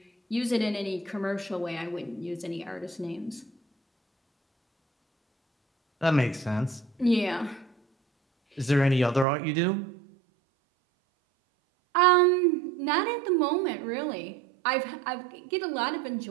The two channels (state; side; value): drops out; left; at 9.2 s